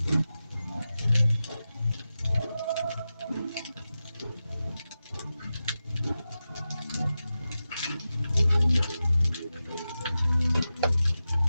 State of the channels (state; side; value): inverted; both; correlation -0.93